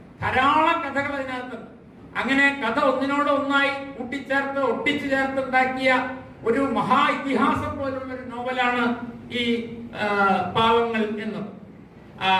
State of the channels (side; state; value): both; identical; correlation 1.00